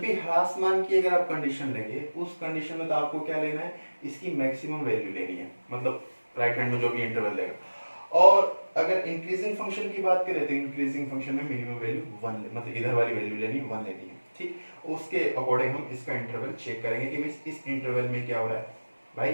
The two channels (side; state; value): both; inverted; correlation -1.00